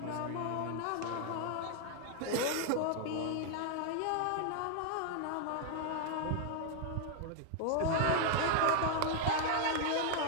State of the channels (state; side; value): different; both; correlation 0.00